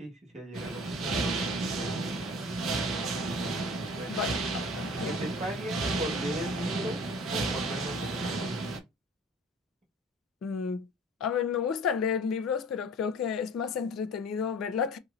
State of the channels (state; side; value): normal; both; correlation 0.43